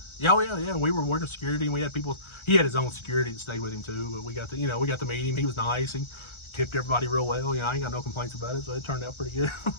Yeah, we were working security, and we had people. He had his own security that stayed with him too. But we got to meet him. He was nice. He tipped everybody real well. I ain't got no complaints about it, so it turned out pretty good.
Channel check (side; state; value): right; late; 1.3 ms